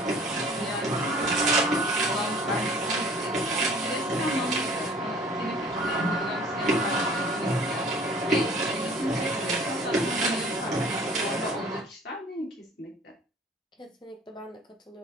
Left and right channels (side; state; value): both; normal; correlation 0.51